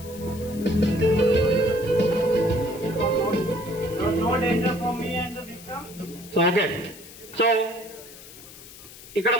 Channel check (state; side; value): noise; left; hiss, 18 dB below the sound